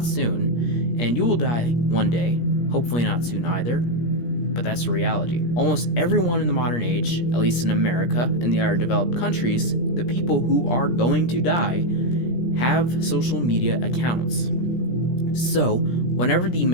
soon, and you will die one day, hopefully not soon either, but that's the reality. Almost everyone in the modern age, at least in America and the other developed countries, the people who are going to die have social media accounts. So, whenever the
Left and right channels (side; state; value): right; late; 17 ms